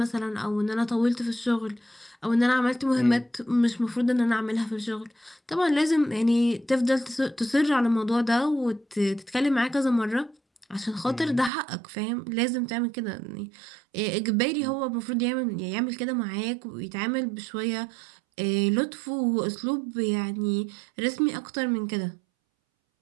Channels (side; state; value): left; drops out; at 11.5 s